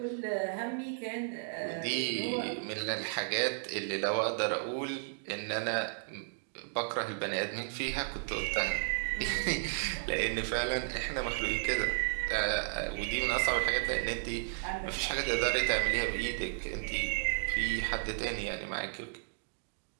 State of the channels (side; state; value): left; silent; digital silence